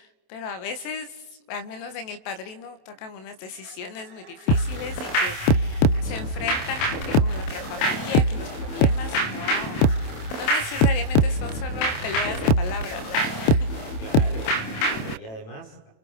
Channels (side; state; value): right; late; 27 ms